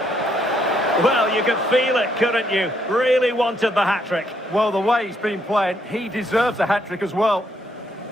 Well, you could feel it, couldn't you? Really wanted the hat-trick. Well, the way he's been playing, he deserves a hat-trick as well.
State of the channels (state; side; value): normal; both; correlation 0.73